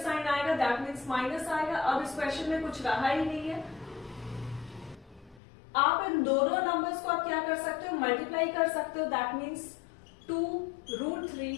आएगा, दैट मीन्स माइनस आएगा। अब इस क्वेश्चन में कुछ रहा ही नहीं है। आप इन दोनों नंबर्स को आप क्या कर सकते हो? मल्टीप्लाई कर सकते हो, that means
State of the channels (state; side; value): drops out; right; at 5.4 s